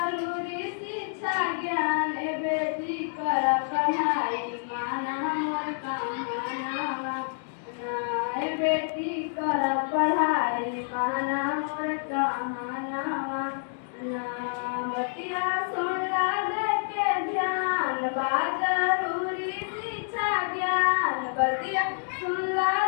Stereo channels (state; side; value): silent; right; digital silence